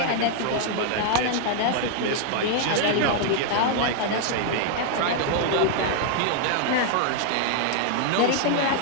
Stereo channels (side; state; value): both; different; correlation 0.00